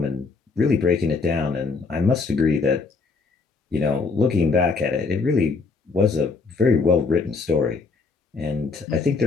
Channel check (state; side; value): quieter; right; 4.3 dB